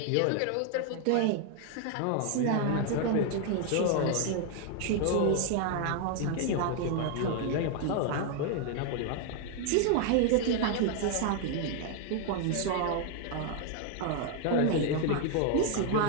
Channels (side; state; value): both; different; correlation 0.00